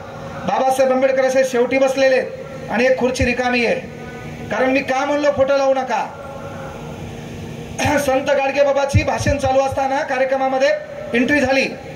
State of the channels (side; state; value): both; identical; correlation 1.00